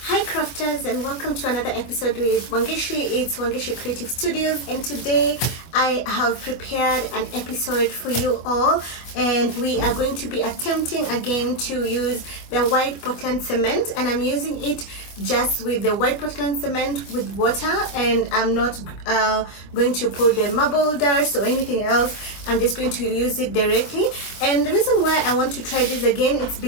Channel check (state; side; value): late; right; 25 ms